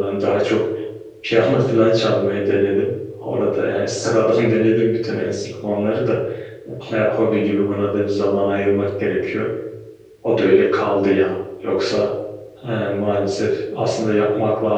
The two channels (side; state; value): both; identical; correlation 1.00